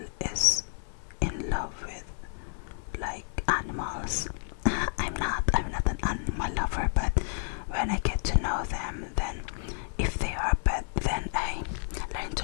is in love with like animals. I'm not an animal lover, but when I get to know them, then if they are a pet, then I learn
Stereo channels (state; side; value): silent; right; 58 dB below the other